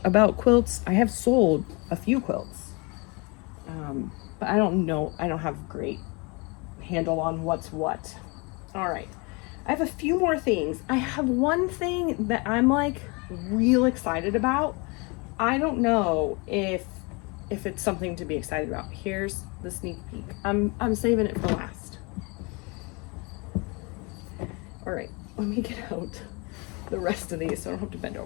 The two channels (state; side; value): quieter; right; 29.4 dB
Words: about quilts. I have sold a few quilts. But I don't know. I don't have great handle on what's what. All right. I have a few more things. I have one thing that I'm like real excited about. I don't know if it's something to be excited about. Here's the sneak peek. I'm saving it for last. All right, let me get out the rest of these so I don't have to bend